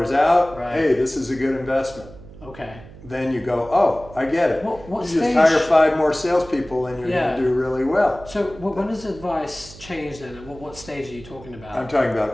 out. Right. Hey, this is a good investment. Okay. Then you go, oh, I get it. What you just hire 5 more salespeople and you're going to do really well. So when does advice change then? What stage are you talking about? I'm talking about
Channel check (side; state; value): right; noise; hum, 18 dB below the sound